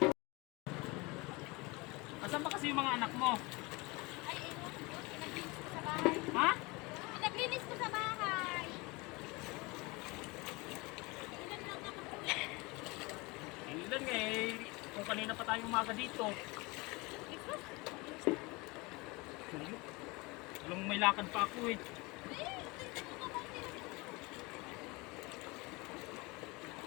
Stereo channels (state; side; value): quieter; right; 25.1 dB